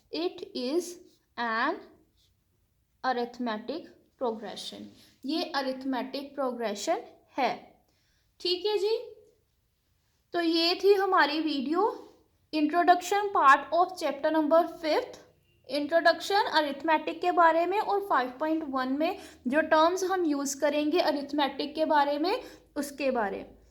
It is an arithmetic progression, ये अरिथमेटिक प्रोग्रेशन है। ठीक है जी, तो ये थी हमारी video introduction part of chapter number 5, introduction arithmetic के बारे में, और 5.1 में जो टर्म्स हम यूज़ करेंगे अरिथमेटिक के बारे में उसके बारे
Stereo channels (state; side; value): identical; both; correlation 1.00